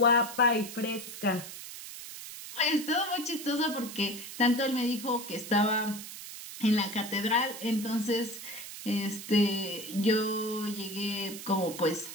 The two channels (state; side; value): noise; right; hiss, 11 dB below the sound